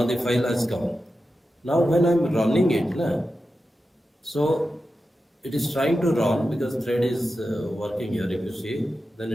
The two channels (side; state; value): both; normal; correlation 0.91